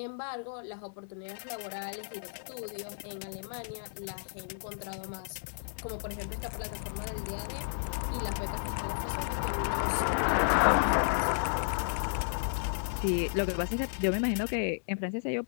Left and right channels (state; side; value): silent; right; digital silence